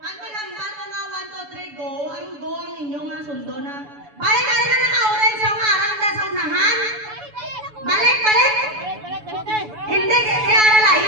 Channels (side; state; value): left; late; 7.0 ms